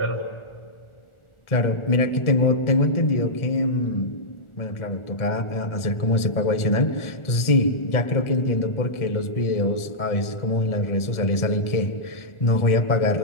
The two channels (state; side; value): late; right; 1.4 ms